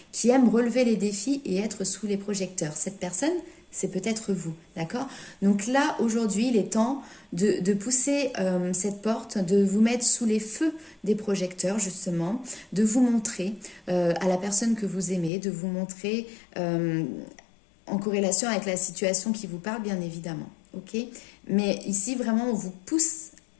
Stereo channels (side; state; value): right; drops out; at 15.3 s